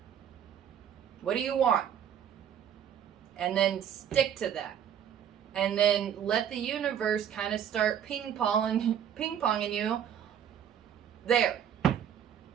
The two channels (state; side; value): quieter; left; 9.1 dB